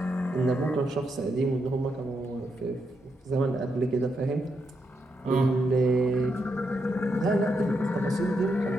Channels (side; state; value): both; normal; correlation 0.81